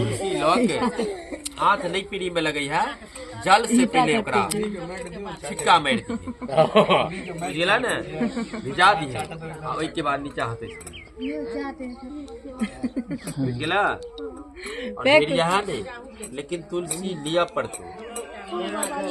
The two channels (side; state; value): both; identical; correlation 1.00